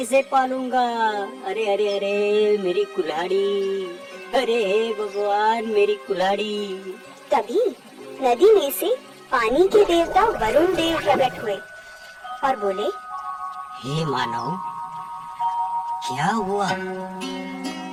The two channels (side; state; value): both; identical; correlation 1.00